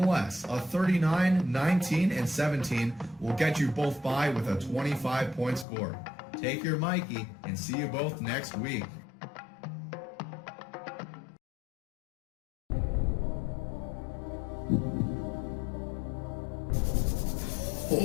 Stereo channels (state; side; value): drops out; right; at 5.7 s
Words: a 39, 19, and 17 will get you both by with a 25-point score. Take your Mikey and see you both next week.